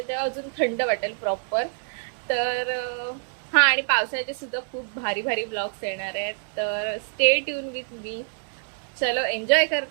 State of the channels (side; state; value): left; silent; digital silence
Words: तेव्हा अजून थंड वाटेल प्रॉपर. तर हा, आणि पावसाचे सुद्धा खूप भारी भारी ब्लॉग्स येणार आहेत. तर स्टे ट्यून विथ मी. चलो एन्जॉय